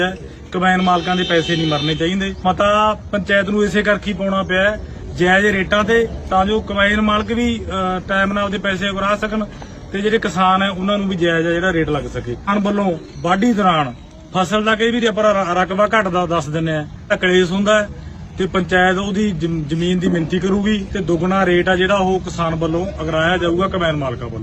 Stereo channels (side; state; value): both; identical; correlation 1.00